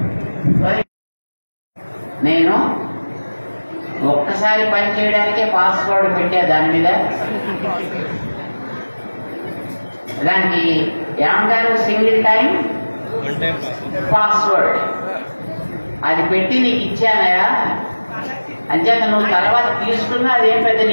నేను ఒక్కసారి పని చేయడానికే పాస్వర్డ్ పెట్టా. దాని మీద దానికి ఏమంటారు? Single time password. అది పెట్టి నీకు ఇచ్చానయా, అంచేత నువ్వు తర్వాత తీసుకున్నా అదేం పెద్ద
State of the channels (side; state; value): both; inverted; correlation -1.00